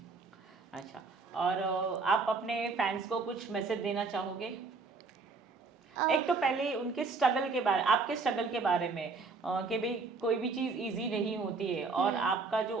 अच्छा, और आप अपने फैंस को कुछ मैसेज देना चाहोगे? एक तो पहले उनके स्ट्रगल के बारे, आपके स्ट्रगल के बारे में कि भाई कोई भी चीज़ इजी नहीं होती है और आपका जो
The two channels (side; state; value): left; quieter; 4.2 dB